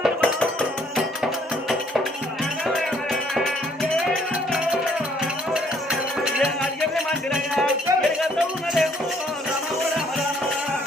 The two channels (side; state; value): both; normal; correlation 0.64